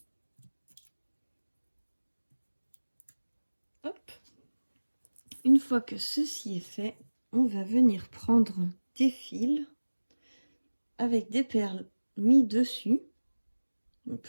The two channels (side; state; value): both; inverted; correlation -1.00